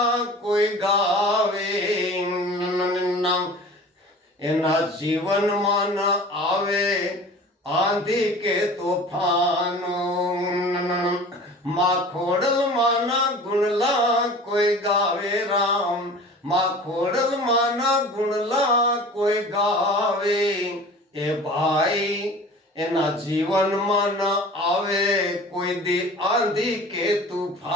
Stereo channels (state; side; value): normal; both; correlation 0.41